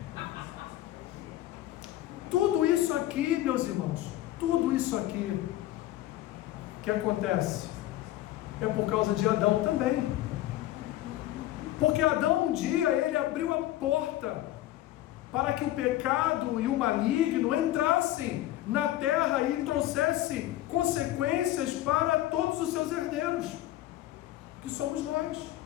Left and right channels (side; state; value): right; quieter; 14.5 dB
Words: Tudo isso aqui, meus irmãos, tudo isso aqui que acontece é por causa de Adão também. Porque Adão um dia ele abriu a porta para que o pecado e o maligno entrassem na terra e trouxessem consequências para todos os seus herdeiros, que somos nós.